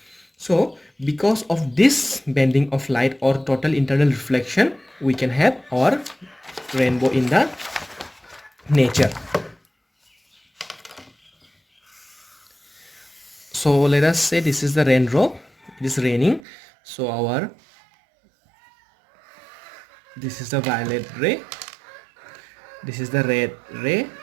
So because of this bending of light or total internal reflection, we can have our rainbow in the nature. So let us say this is the raindrop, it is raining. So this is the violet ray, this is the red ray,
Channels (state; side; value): drops out; left; at 16.4 s